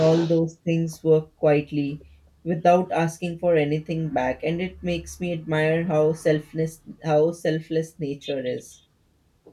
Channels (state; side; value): identical; both; correlation 1.00